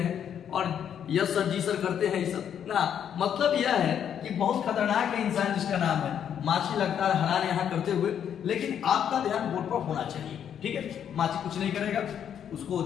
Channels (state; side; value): quieter; right; 8.9 dB